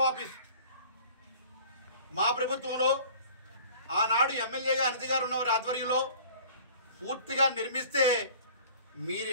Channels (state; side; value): inverted; both; correlation -0.47